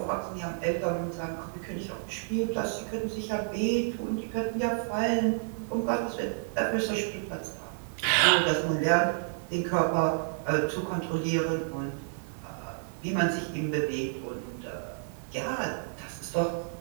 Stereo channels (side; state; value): left; silent; 58 dB below the other